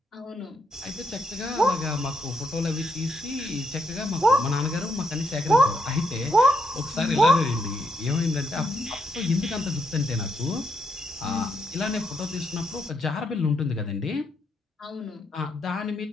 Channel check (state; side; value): normal; both; correlation 0.78